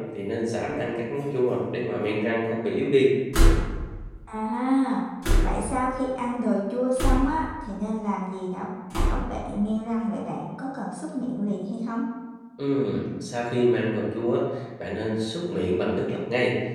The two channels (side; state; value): both; identical; correlation 1.00